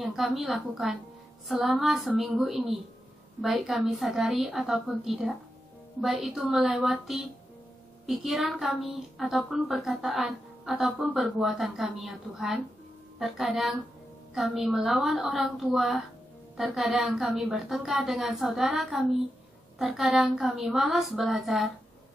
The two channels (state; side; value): normal; both; correlation 0.88